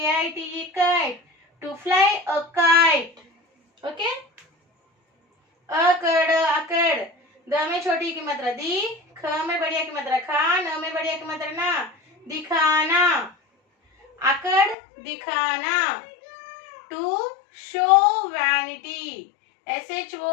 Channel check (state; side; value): drops out; right; at 14.8 s